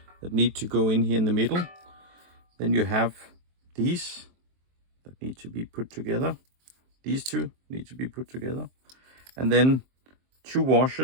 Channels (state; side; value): late; left; 23 ms